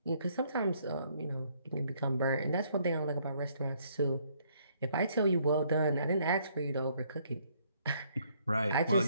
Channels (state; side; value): inverted; both; correlation -0.67